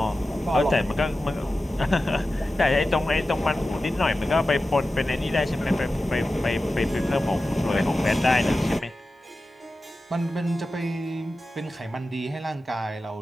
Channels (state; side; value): normal; both; correlation 0.94